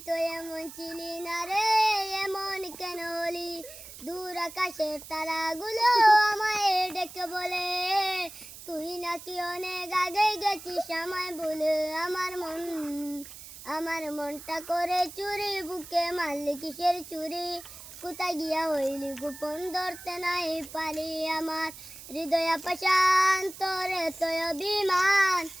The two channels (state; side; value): noise; right; hiss, 15 dB below the sound